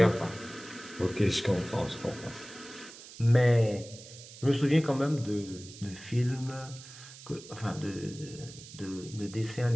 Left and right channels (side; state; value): right; noise; hiss, 17 dB below the sound